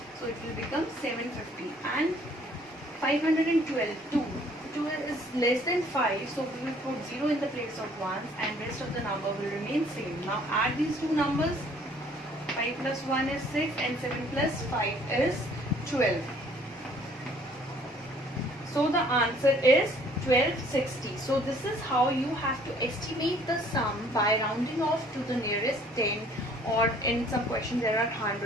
it will become 750. And 512, 2 is less than 5, so we will put 0 in the place of 1 and rest of the number will remain same. Now add these two numbers. 5 plus 1 is 6 and 7 plus 5 is 12. So the answer is 1260. So this is how you have to estimate the sum by rounding off to the nearest 10, or in some questions there are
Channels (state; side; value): normal; both; correlation 0.58